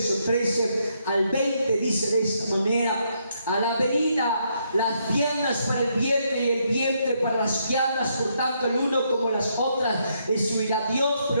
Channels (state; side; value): inverted; both; correlation -0.75